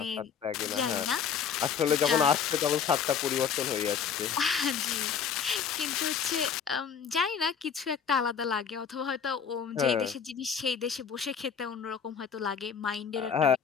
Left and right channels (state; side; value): quieter; right; 7.1 dB